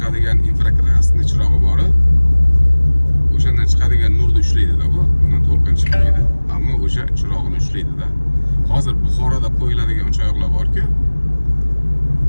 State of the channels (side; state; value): both; inverted; correlation -1.00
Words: infrakrasniy chirog'i bor. O'shandan chiqadigan nurni ushlaydi-da bu. Bundan to'lqin chiqmaydi, ammo o'sha chirog'ini ushlaydi-da. Hozir Buxoroda qo'yiladigan uchoqlar bor-ku,